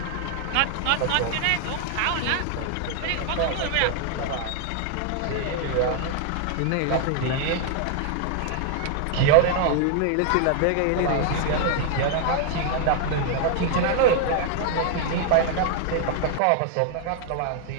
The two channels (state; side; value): different; both; correlation 0.00